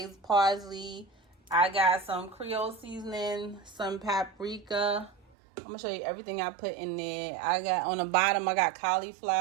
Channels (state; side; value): drops out; left; at 5.3 s